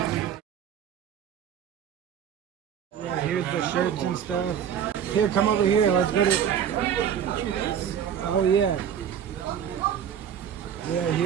Yeah, here's the shirts and stuff. Here, come over here. Let's go to... Oh, yeah. Yeah,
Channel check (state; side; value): quieter; left; 8.7 dB